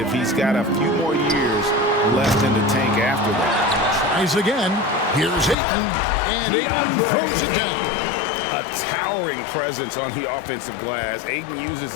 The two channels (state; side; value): drops out; right; at 5.6 s